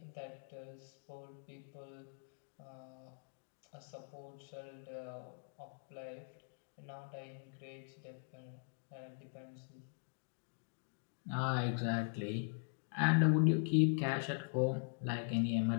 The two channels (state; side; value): silent; right; digital silence